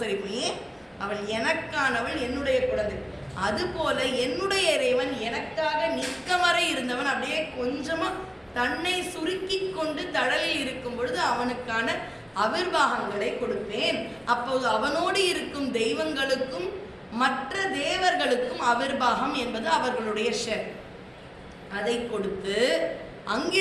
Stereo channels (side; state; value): both; identical; correlation 1.00